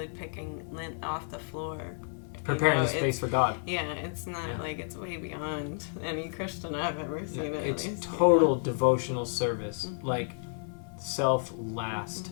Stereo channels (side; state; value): right; silent; digital silence